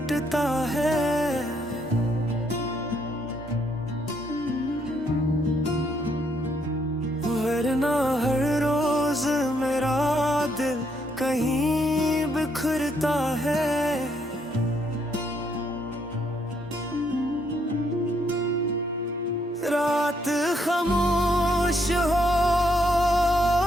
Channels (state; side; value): normal; both; correlation 0.73